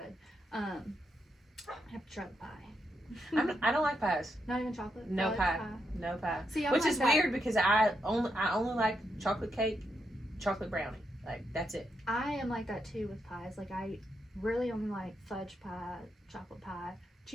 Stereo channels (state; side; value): normal; both; correlation 0.82